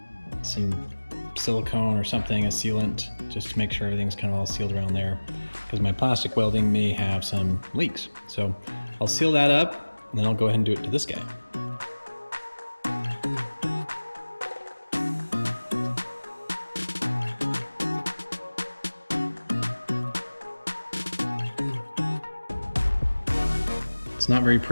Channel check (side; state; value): both; inverted; correlation -1.00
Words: some silicone or something, a sealant, just to make sure everything's kind of all sealed around there, because my plastic welding may have some leaks. So I'll seal that up, and then I'll go ahead and do it to this guy. It's not very